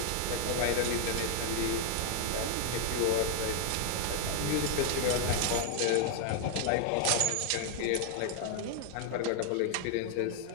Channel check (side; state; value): both; different; correlation 0.00